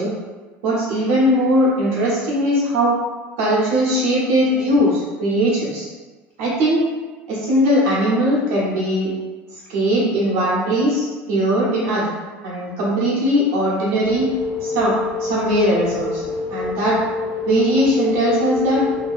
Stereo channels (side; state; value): both; normal; correlation 0.39